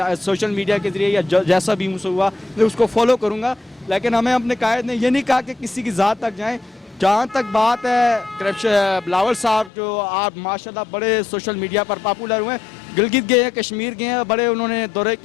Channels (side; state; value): right; drops out; at 9.7 s